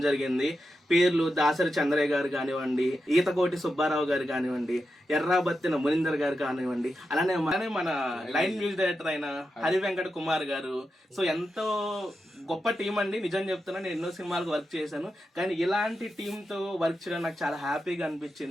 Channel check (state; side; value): normal; both; correlation 0.88